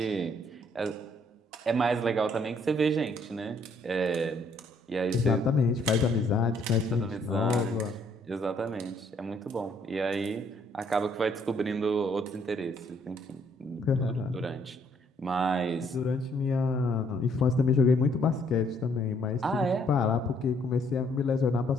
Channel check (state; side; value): normal; both; correlation 0.67